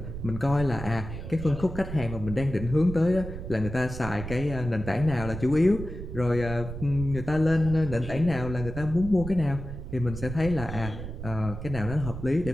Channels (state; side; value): noise; right; rumble, 9 dB below the sound